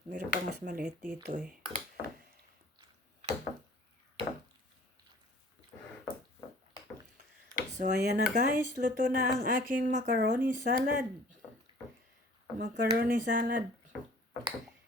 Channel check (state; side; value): normal; both; correlation 0.50